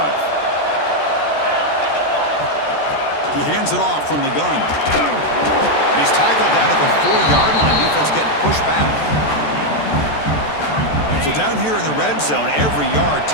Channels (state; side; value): late; right; 14 ms